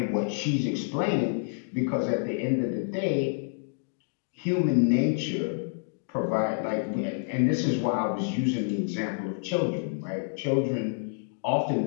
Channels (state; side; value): silent; right; digital silence